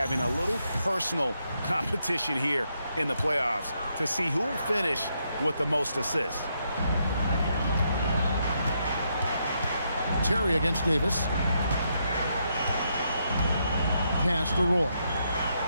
a little personal competition here in the playoffs to see who will finish with the most assists. Terry against Davis. Pass to Roy.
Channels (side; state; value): both; inverted; correlation -0.78